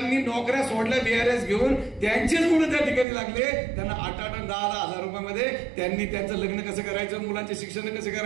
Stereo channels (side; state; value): left; drops out; at 3.1 s